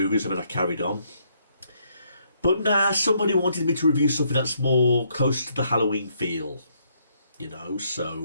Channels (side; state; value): both; inverted; correlation -0.72